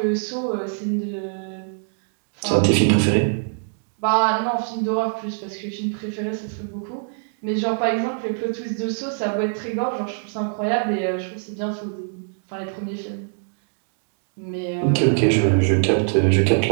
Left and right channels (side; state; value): left; silent; 63 dB below the other